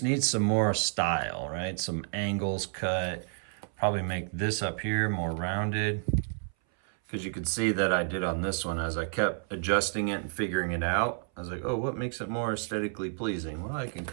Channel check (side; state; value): left; silent; 58 dB below the other